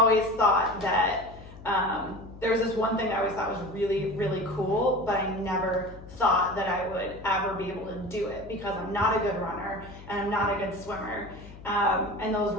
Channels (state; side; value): noise; left; hum, 17 dB below the sound